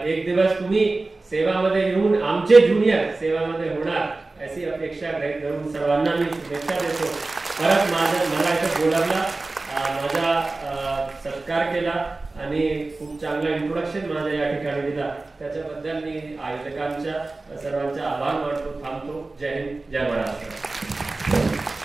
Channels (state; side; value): quieter; left; 3.3 dB